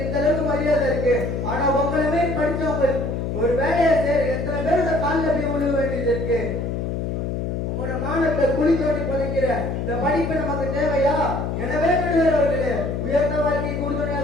இந்த அளவுக்கு மரியாதை இருக்கு. ஆனா உங்களுமே படிச்சவங்க ஒரு வேலையை செய்ய எத்தனை பேரோட காலில் போய் விழுக வேண்டியது இருக்கு. உங்களோட மானத்தை குழி தோண்டி புதைக்கிற இந்த படிப்பு நமக்கு தேவையா? எனவே நடுவர்களே, உயர்ந்த வாழ்க்கை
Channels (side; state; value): left; noise; hum, 2 dB below the sound